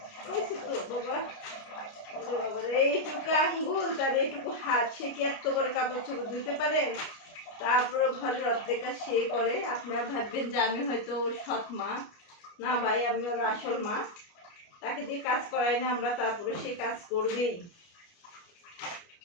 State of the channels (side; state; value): right; late; 29 ms